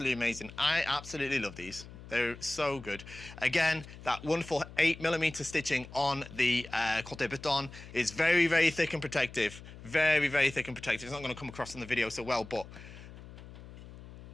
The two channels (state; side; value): noise; left; hum, 16 dB below the sound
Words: amazing. I absolutely love these. They're so good. Again, that wonderful 8mm stitching on the kote baton is very, very thick and protective. Very, very thick and protective. It's not going to come across in the video so well, but